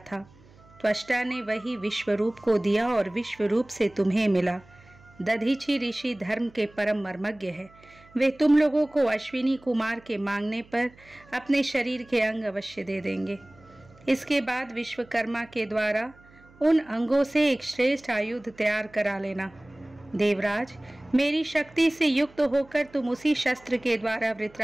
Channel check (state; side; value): noise; right; hum, 26 dB below the sound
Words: त्वष्टा ने वही विश्वरूप को दिया और विश्वरूप से तुम्हें मिला। दधीचि ऋषि धर्म के परम मर्मज्ञ है। वे तुम लोगों को अश्विनी कुमार के मांगने पर अपने शरीर के अंग अवश्य दे देंगे। इसके बाद विश्वकर्मा के द्वारा उन अंगों से एक श्रेष्ठ आयुध तैयार करा लेना। देवराज, मेरी शक्ति से युक्त होकर तुम उसी शस्त्र के द्वारा